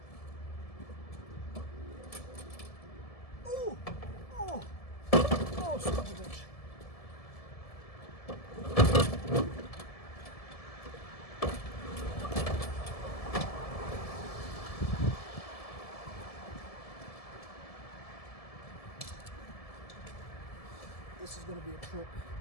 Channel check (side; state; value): right; late; 1.7 ms